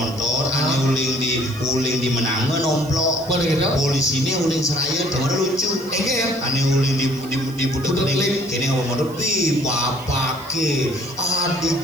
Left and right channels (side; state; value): right; noise; hiss, 21 dB below the sound